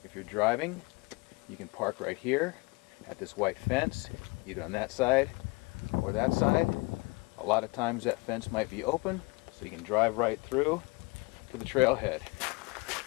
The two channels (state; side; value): quieter; right; 27.4 dB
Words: If you're driving, you can park right here at this white fence, either on that side or that side. A lot of times that fence might be open, so you can drive right through to the trailhead.